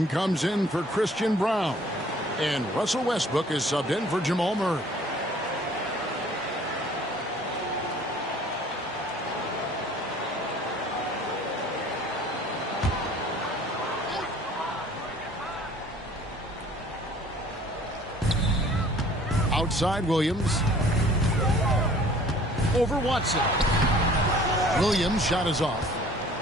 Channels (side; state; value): both; normal; correlation 0.52